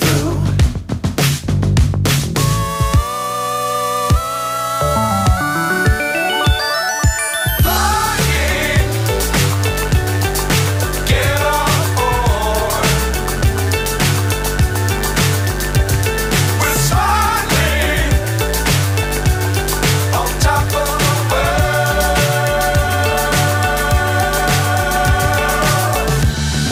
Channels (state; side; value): identical; both; correlation 1.00